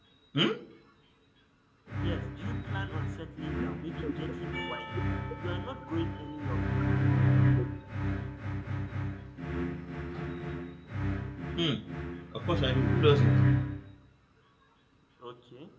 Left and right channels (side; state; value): both; identical; correlation 1.00